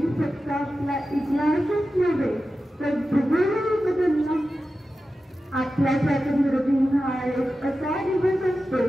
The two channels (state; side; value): normal; both; correlation 0.93